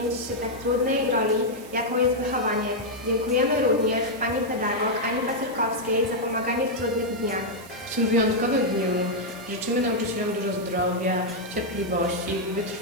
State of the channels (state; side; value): noise; right; hiss, 20 dB below the sound